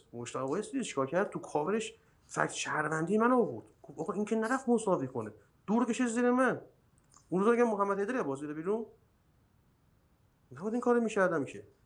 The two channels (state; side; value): identical; both; correlation 1.00